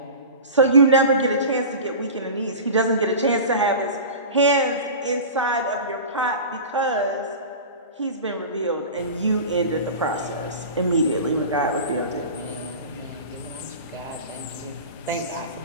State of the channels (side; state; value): both; inverted; correlation -0.33